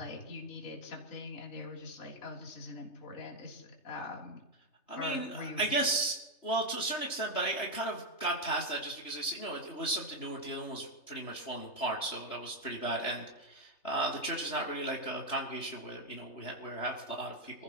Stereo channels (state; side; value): late; right; 3.3 ms